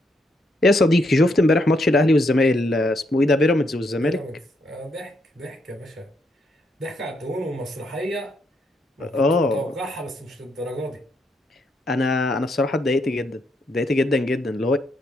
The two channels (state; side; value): normal; both; correlation 0.77